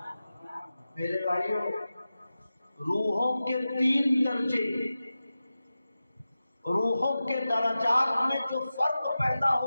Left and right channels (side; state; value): both; inverted; correlation -0.94